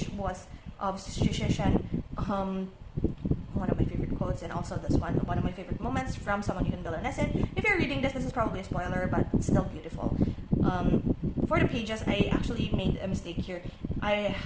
was of Shushan, one of my favorite quotes, and also this one of my favorite moments from Someone You Can Build a Nest In. If you're reading this is probably a spoiler, but it's still beautiful. For the pages, I actually made a mistake here. I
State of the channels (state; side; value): identical; both; correlation 1.00